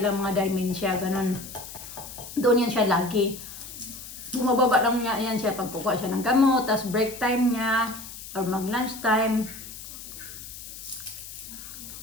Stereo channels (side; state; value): left; noise; hiss, 12 dB below the sound